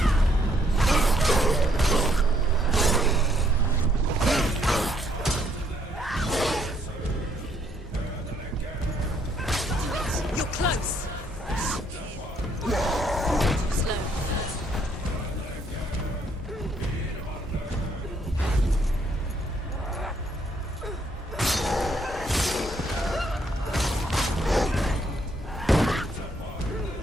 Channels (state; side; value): normal; both; correlation 0.69